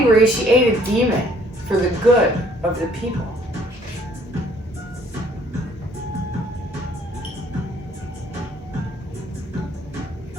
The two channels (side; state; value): both; normal; correlation 0.61